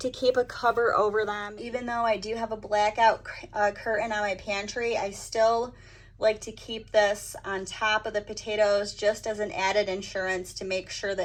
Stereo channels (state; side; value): identical; both; correlation 1.00